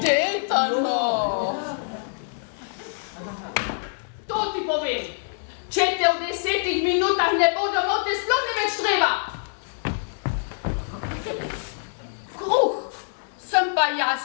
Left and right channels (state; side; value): silent; right; digital silence